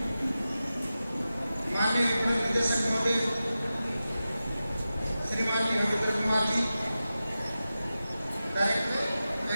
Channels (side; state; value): both; inverted; correlation -0.93